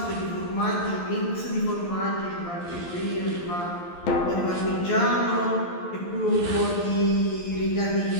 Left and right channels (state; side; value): late; right; 11 ms